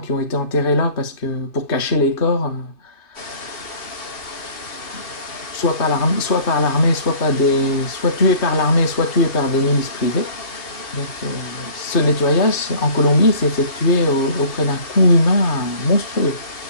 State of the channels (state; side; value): late; right; 2.5 ms